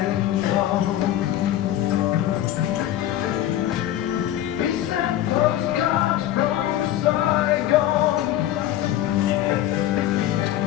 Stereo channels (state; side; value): quieter; right; 12.8 dB